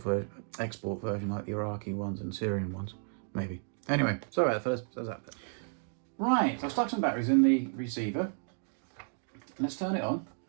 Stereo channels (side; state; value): left; silent; 56 dB below the other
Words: version like the Iraqi ones and Syrian ones, maybe. Anyway, sorry about that, fellas. Right, so I've stuck some batteries in the receiver. Let's turn it on.